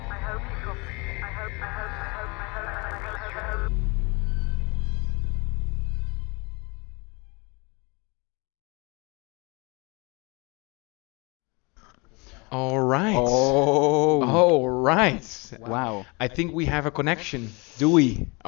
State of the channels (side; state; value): right; quieter; 28.3 dB